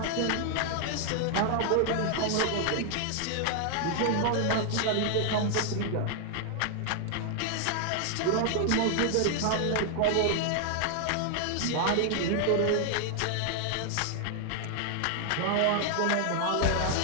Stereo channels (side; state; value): both; different; correlation 0.00